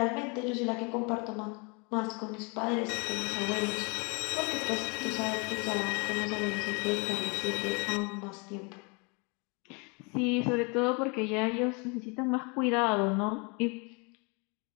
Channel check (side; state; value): right; quieter; 31.7 dB